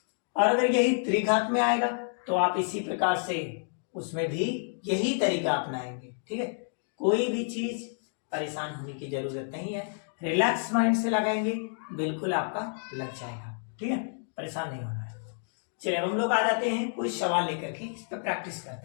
और अगर यही त्रिघात में आएगा तो आप इसी प्रकार से उसमें भी यही तरीका अपनाएंगे। ठीक है, कोई भी चीज परेशान होने की जरूरत नहीं है, रिलैक्स माइंड से लगाएंगे, बिल्कुल आपका लग जाएगा। ठीक है, परेशान नहीं होना है। चलिए हम लोग आ जाते हैं कोई सवाल लेकर के, इस पर प्रैक्टिस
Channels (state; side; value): silent; right; digital silence